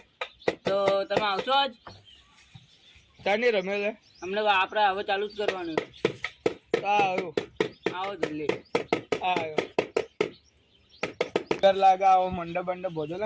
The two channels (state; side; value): identical; both; correlation 1.00